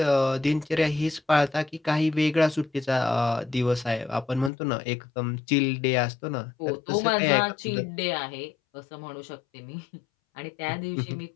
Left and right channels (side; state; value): right; drops out; at 4.5 s